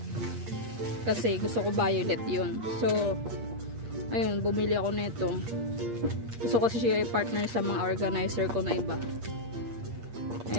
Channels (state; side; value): late; left; 8.5 ms